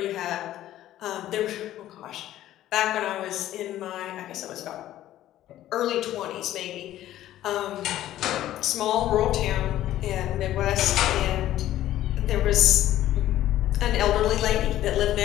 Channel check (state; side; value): quieter; right; 13.4 dB